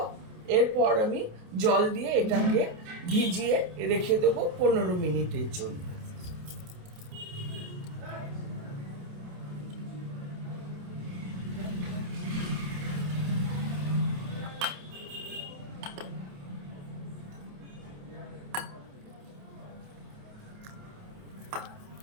এরপর আমি জল দিয়ে এটাকে ভিজিয়ে রেখে দেবো 15 মিনিটের জন্য।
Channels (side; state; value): left; late; 28 ms